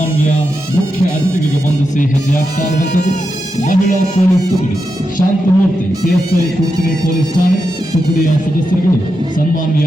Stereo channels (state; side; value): normal; both; correlation 0.87